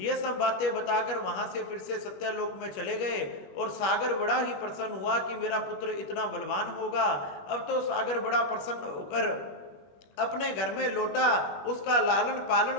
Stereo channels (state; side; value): late; right; 21 ms